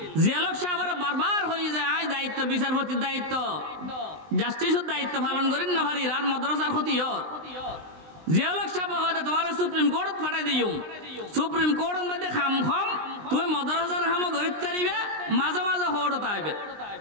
জিয়াউল সাহেবের বারবার হই যায় আই দায়িত্ব বিচারপতির দায়িত্ব জাস্টিসের দায়িত্ব পালন করেন না ভারি আর মাদ্রাসার ক্ষতি হর জিয়াউল সাহেব কইতে তোমার সুপ্রিম কোর্ট পাঠাই দিও সুপ্রিম কোর্টের মধ্যে খাম তুই মাদ্রাসার খাম গরিব তারিবে মাঝে মাঝে হড় তাইবে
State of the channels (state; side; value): late; left; 20 ms